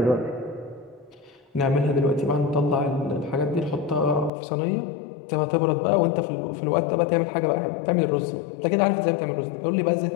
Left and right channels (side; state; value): right; drops out; at 4.3 s